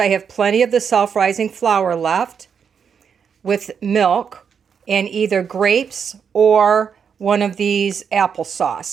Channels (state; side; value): quieter; left; 6.9 dB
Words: have plenty of the self-rising flour left, with milk, and either grapes or one of these